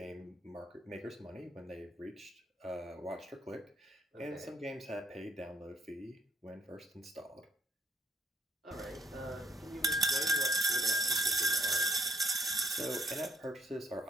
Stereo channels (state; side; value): normal; both; correlation 0.68